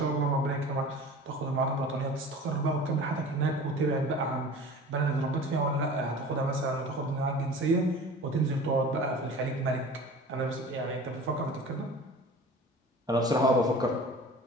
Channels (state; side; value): normal; both; correlation 0.39